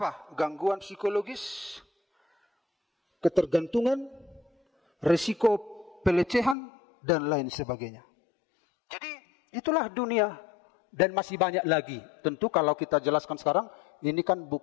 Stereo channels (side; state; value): right; drops out; at 6.6 s